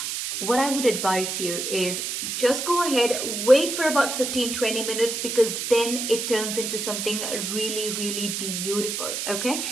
what I would advise you is just go ahead, wait for about 15-20 minutes, because then it turns into something really, really beautiful. Okay,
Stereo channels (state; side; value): noise; right; hiss, 3 dB below the sound